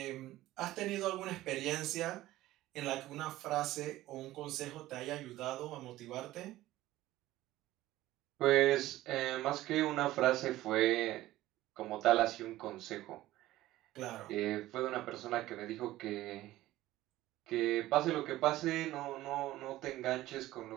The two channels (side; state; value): left; quieter; 15.9 dB